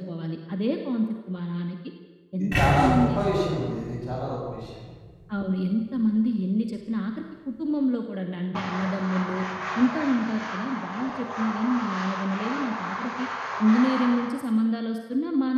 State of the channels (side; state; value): both; identical; correlation 1.00